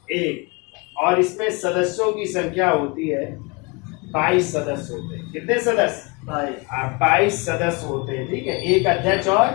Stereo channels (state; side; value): quieter; right; 28.6 dB